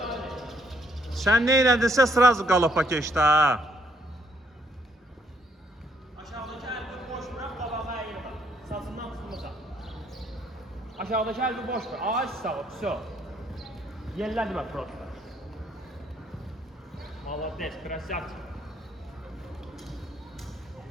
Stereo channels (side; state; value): both; normal; correlation 0.69